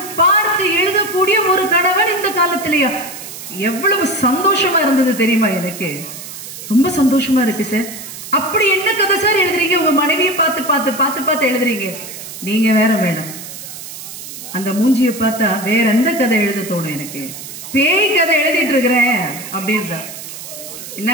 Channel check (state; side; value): noise; right; hiss, 12 dB below the sound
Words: எழுதக்கூடிய ஒரு கணவன் இந்த காலத்திலேயா? எவ்வளவு சந்தோஷமா இருந்தது தெரியுமா? எனக்கு ரொம்ப சந்தோஷமா இருக்கு சார். அப்படி என்ன கதை சார் எழுதுறீங்க? உங்க மனைவியை பார்த்து எழுதுறீங்க. நீங்க வேற மேடம், அந்த மூஞ்சியை பார்த்தா வேற எந்த கதை எழுத தோணும் எனக்கு? பேய் கதை எழுதிட்டு இருக்கிறேன் அப்படின்ற. என்ன